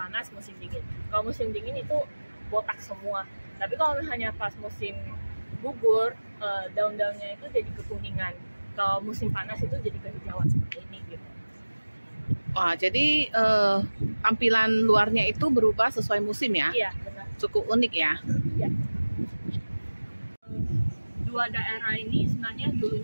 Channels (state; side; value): inverted; both; correlation -1.00